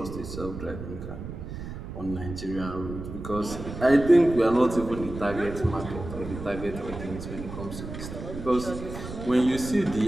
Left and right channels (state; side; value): noise; right; rumble, 9 dB below the sound